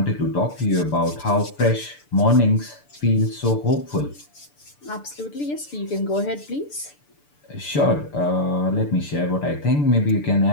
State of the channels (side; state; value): right; late; 6.8 ms